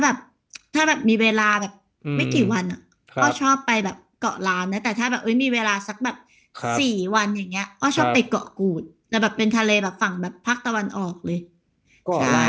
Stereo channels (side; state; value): both; identical; correlation 1.00